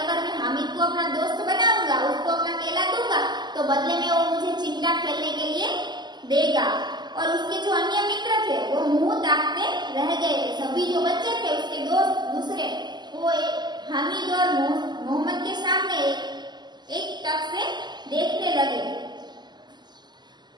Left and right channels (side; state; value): left; late; 0.21 ms